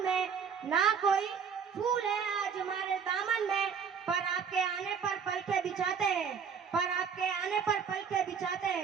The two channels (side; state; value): left; quieter; 6.6 dB